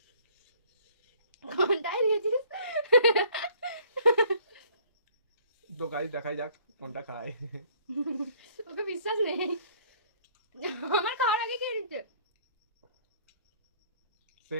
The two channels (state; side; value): inverted; both; correlation -0.57